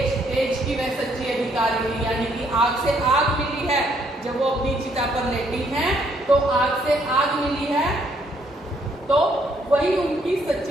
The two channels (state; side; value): normal; both; correlation 0.69